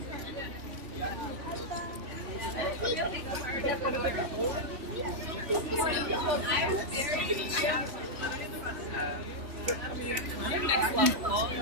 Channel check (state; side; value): late; left; 3.4 ms